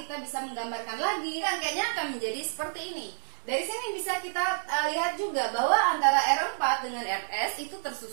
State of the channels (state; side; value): silent; left; 58 dB below the other